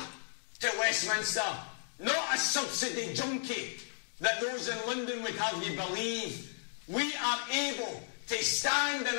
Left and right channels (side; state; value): right; silent; digital silence